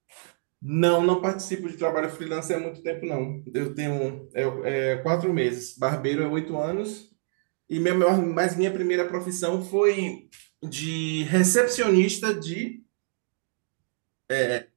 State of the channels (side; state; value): left; silent; digital silence